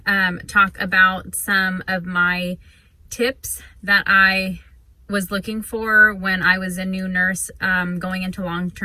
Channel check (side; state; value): both; identical; correlation 1.00